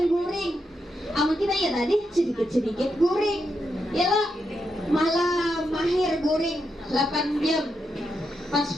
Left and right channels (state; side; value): normal; both; correlation 0.83